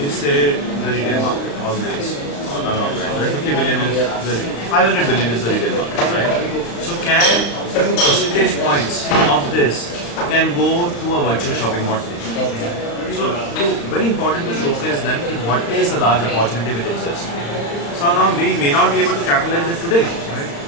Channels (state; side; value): late; right; 35 ms